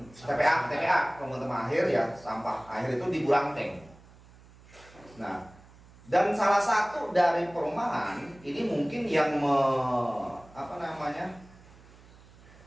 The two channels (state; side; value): noise; right; hum, 24 dB below the sound